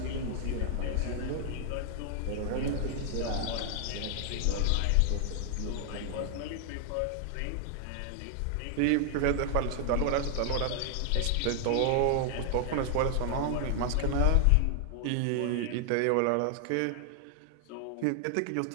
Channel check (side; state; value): both; different; correlation 0.00